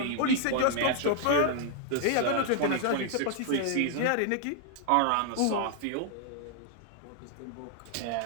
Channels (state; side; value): different; both; correlation 0.00